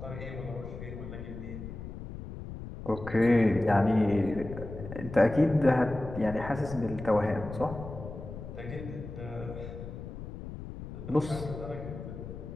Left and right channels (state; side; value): noise; left; rumble, 10 dB below the sound